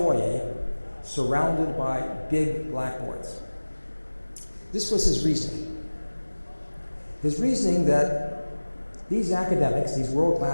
surrounded by big blackboards. This was his reasoning. His reasoning that these academics, these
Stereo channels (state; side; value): inverted; both; correlation -1.00